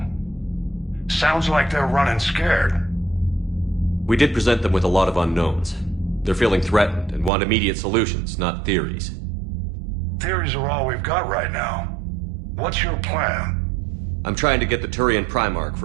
Sounds like they're running scared. We did present them with a lot of unknowns. They're feeling threatened and want immediate solutions, not theories. Theories are all we've got right now. What's your plan? I'm trying to get the Turian Primarch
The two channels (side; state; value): left; drops out; at 7.3 s